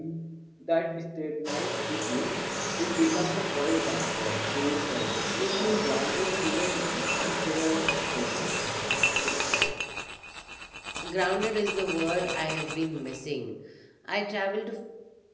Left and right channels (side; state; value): both; identical; correlation 1.00